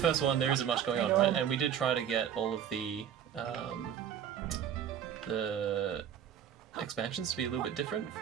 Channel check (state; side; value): quieter; left; 9.1 dB